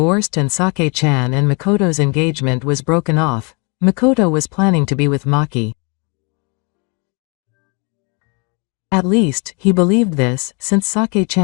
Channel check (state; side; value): quieter; right; 32.7 dB